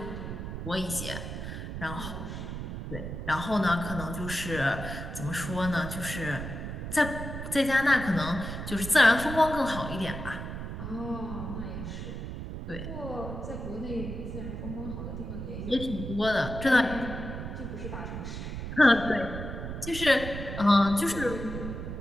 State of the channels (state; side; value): noise; right; rumble, 7 dB below the sound